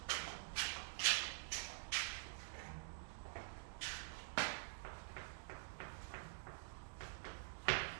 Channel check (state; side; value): silent; left; digital silence